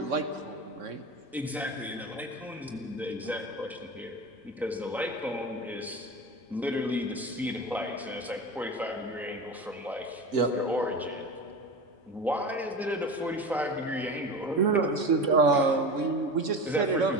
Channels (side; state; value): both; normal; correlation 0.29